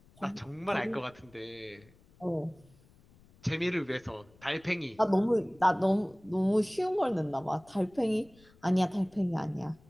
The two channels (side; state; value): left; noise; rumble, 28 dB below the sound